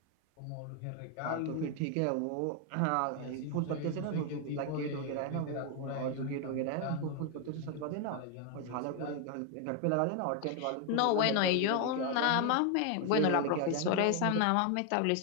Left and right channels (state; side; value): different; both; correlation 0.01